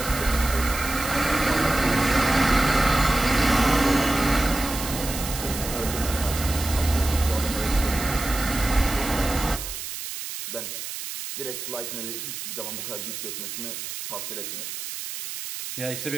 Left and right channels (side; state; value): right; noise; hiss, 7 dB below the sound